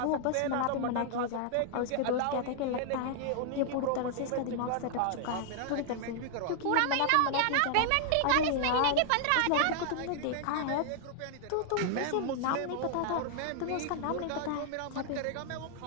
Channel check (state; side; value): different; both; correlation 0.00